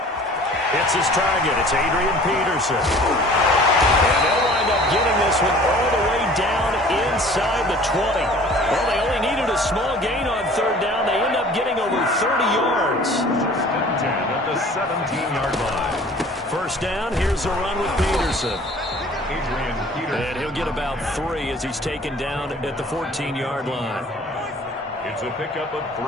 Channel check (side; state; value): both; normal; correlation 0.48